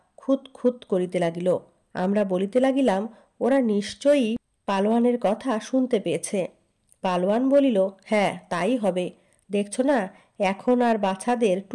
খুঁত খুঁত করিতে লাগিল। আমরা বলিতে লাগিলাম, ওরা নিশ্চয়ই পালোয়ানের কথা শুনতে পেয়েছে। পালোয়ান বলিল, হ্যাঁ তাই হবে, দেখছ না এখন আর বাছাদের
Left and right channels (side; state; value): both; identical; correlation 1.00